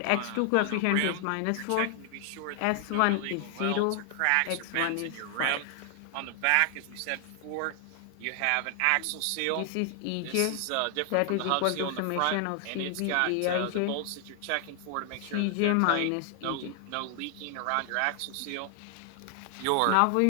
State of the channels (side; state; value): both; different; correlation 0.00